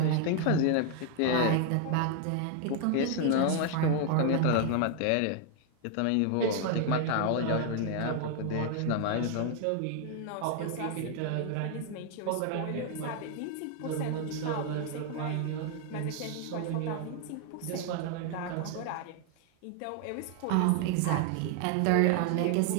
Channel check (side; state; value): both; different; correlation 0.00